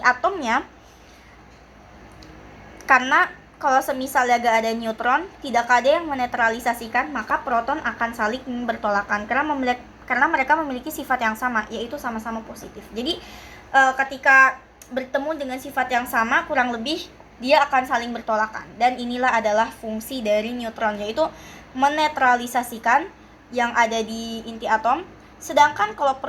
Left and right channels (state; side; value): identical; both; correlation 1.00